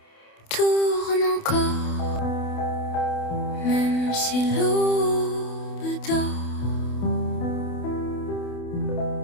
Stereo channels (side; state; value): right; late; 28 ms